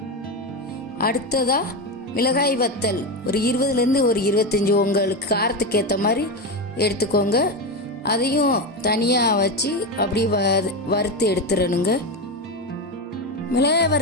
அடுத்ததா மிளகாய் வத்தல் ஒரு 20லேருந்து ஒரு 25 உங்களுக்கு காரத்துக்கு ஏற்ற மாதிரி எடுத்துக்கோங்க. அதையும் தனியாக வச்சு அப்படியே வறுத்து எடுத்துடணுங்க. மிளகாய்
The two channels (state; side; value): normal; both; correlation 0.14